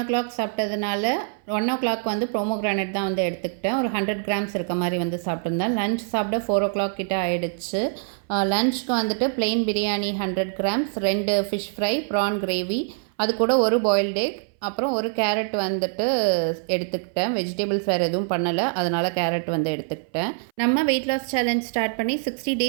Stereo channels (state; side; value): silent; left; 59 dB below the other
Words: o'clock சாப்பிட்டதுனால 1 o'clock வந்து ப்ரோமோகிரானட் தான் வந்து எடுத்துக்கிட்டேன். ஒரு 100 கிராம்ஸ் இருக்க மாதிரி வந்து சாப்பிட்ருந்தேன். லஞ்ச் சாப்பிட 4 o'clock கிட்ட ஆகிடுச்சு. லஞ்சுக்கு வந்துட்டு plain biryani 100 grams, 2 fish fry, prawn gravy, அது கூட ஒரு பாயில்டு எக், அப்புறம் ஒரு கேரட் வந்துட்டு எடுத்துக்கிட்டேன். வெஜிடபிள்ஸ் வேறு எதுவும் பண்ணலை, அதனால் கேரட் வந்து எடுத்துக்கிட்டேன். நம்ம வெயிட் லாஸ் சேலஞ்ச் ஸ்டார்ட் பண்ணி 60